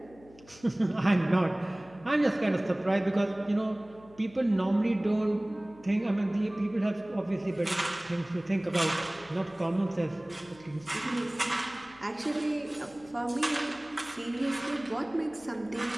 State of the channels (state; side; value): noise; left; hum, 24 dB below the sound